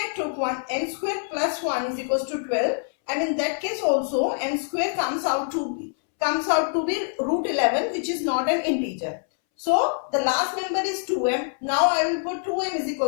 took one, n square plus 1 is equals to 12, and in that case also m square comes out to be root 11, which is not an integer. So the last member is 2m. Now I will put 2m is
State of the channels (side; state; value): right; silent; 62 dB below the other